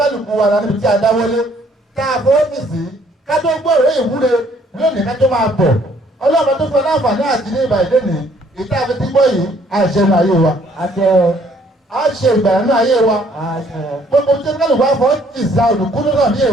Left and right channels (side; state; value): both; normal; correlation 0.63